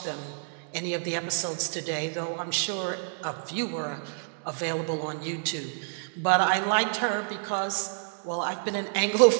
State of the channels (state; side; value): silent; left; digital silence